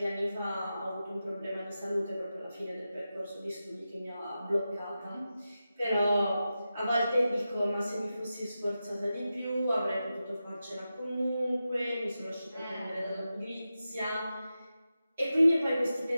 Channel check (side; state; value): both; inverted; correlation -0.92